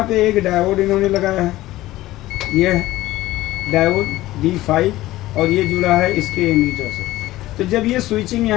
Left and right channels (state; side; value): quieter; right; 16.5 dB